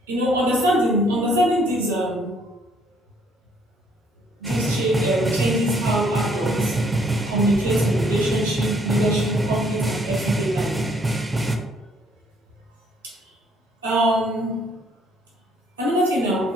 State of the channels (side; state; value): both; normal; correlation 0.65